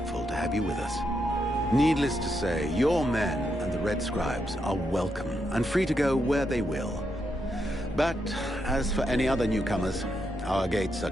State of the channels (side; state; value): both; normal; correlation 0.82